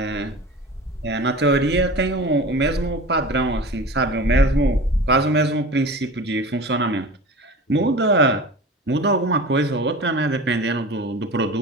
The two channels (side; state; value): both; normal; correlation 0.36